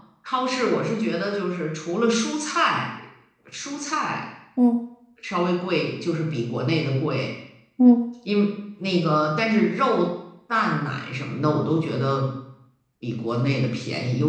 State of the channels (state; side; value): identical; both; correlation 1.00